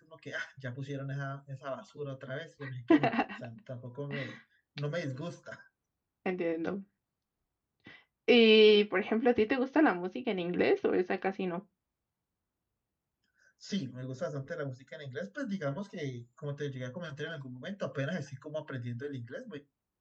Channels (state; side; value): identical; both; correlation 1.00